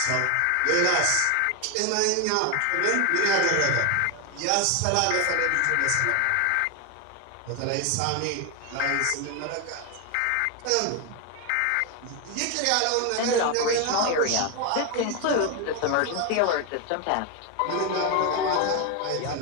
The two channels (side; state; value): both; different; correlation 0.01